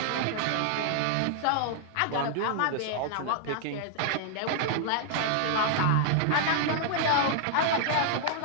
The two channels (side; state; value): both; different; correlation -0.01